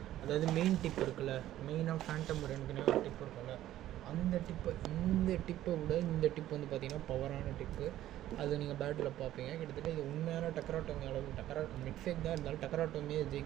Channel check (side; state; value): left; quieter; 13.4 dB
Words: அதாவது மெயின் டிப் இருக்குல்ல, மெயினாக ஃபேண்டம் ரெண்டுக்குனே ஒரு டிப் இருக்குல்ல, அந்த டிப்பு, இந்த டிப்பை விட இந்த டிப் வந்து பார்த்திங்கன்னா பவரான டிப்பு. அது நீங்கள் பேட்டில் பார்ப்பீங்க. கிட்டத்தட்ட இது உண்மையான டக்கராட்டோமி அளவுக்கு, மிட்ஃபேக் தான் இருந்தாலும் டக்கராட்டோமியை